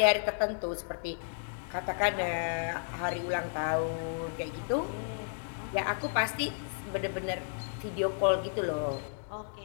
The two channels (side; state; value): right; silent; digital silence